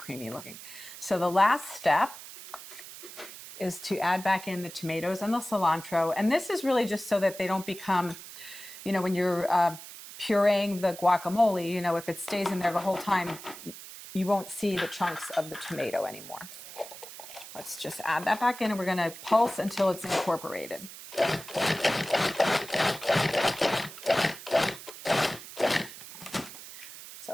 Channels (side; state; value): right; noise; hiss, 14 dB below the sound